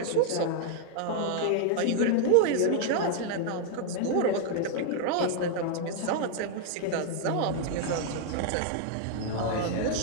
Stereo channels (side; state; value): both; different; correlation 0.00